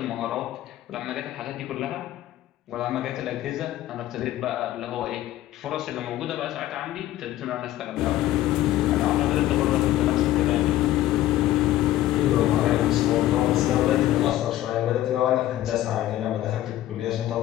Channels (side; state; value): right; quieter; 14.1 dB